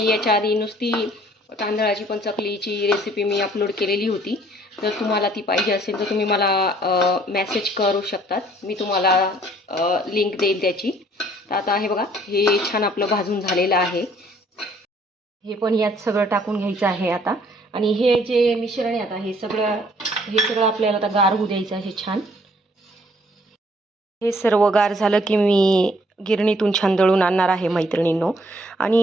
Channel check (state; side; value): normal; both; correlation 0.61